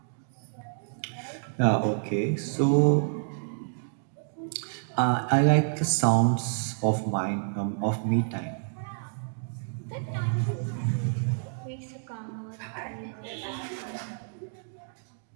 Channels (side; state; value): left; silent; digital silence